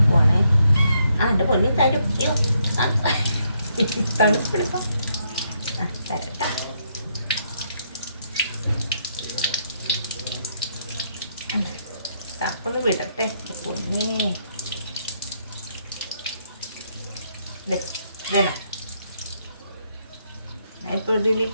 എൻ്റെ പൊന്നി തരും. അയ്യോ തണുപ്പെടുക്കാം. തരട്ടാ. തപ്പൊന്ന് വിടട്ടെ പൊന്നേ. ഇതേനാ ഞാൻ ഇപ്പോൾ ഇതിൽ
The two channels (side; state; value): both; inverted; correlation -0.75